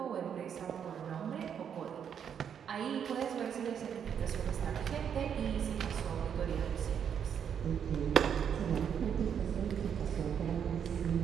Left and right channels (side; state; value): left; quieter; 8.1 dB